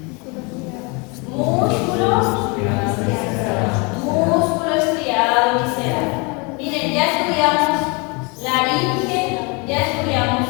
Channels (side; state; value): right; quieter; 30.4 dB